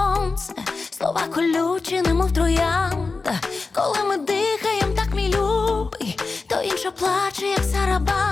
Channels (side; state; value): right; quieter; 4.0 dB